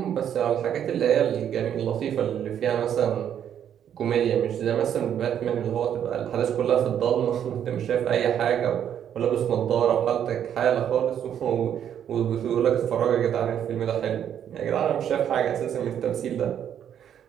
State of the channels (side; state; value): left; quieter; 9.4 dB